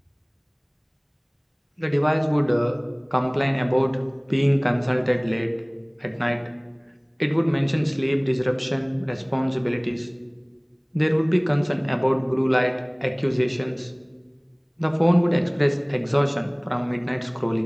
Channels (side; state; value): both; identical; correlation 1.00